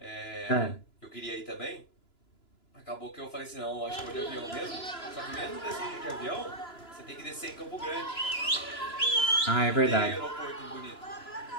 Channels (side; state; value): right; late; 2.9 ms